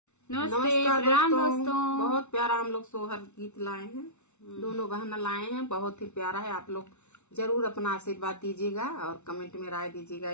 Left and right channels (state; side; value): late; right; 0.82 ms